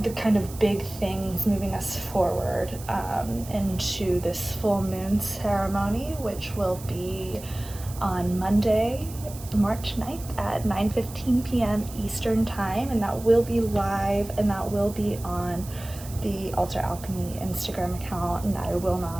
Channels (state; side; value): noise; right; hiss, 16 dB below the sound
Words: the kind of big things moving us forward into this full moon ceremony, which will be on Monday, March 9th at 9:15 p.m. Eastern time, and that will be live, and that will be on the Alter Alchemy Instagram account, and I will